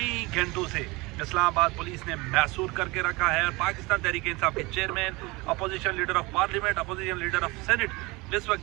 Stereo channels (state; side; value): quieter; left; 24.0 dB